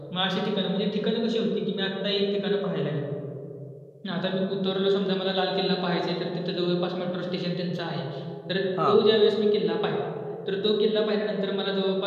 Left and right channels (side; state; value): both; identical; correlation 1.00